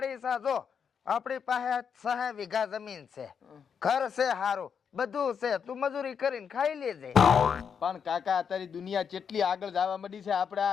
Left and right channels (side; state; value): right; quieter; 6.9 dB